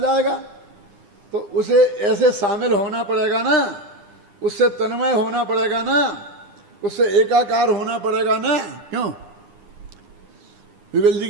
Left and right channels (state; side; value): late; left; 9.8 ms